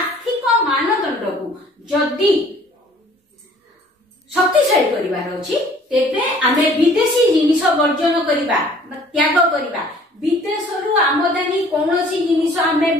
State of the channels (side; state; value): both; normal; correlation 0.54